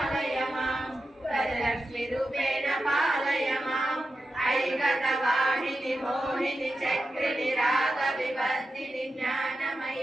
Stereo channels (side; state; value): both; normal; correlation 0.90